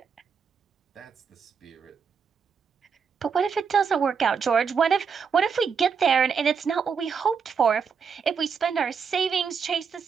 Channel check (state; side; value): quieter; left; 6.2 dB